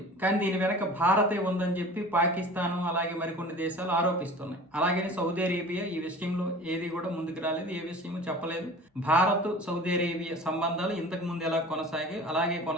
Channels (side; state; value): both; normal; correlation 0.41